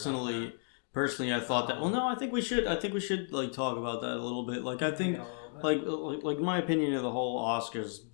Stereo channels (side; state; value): right; silent; 56 dB below the other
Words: I thought that. Well, no, I think we should like talk about that a little bit. Like I think. Like my opinion of the whole Oscars